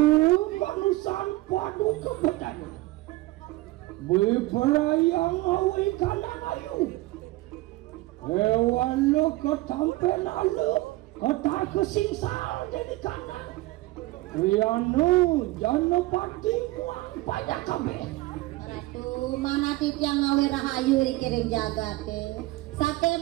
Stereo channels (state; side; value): quieter; left; 19.5 dB